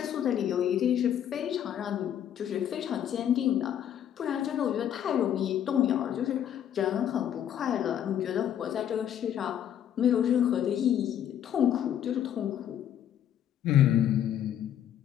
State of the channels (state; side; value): quieter; right; 10.1 dB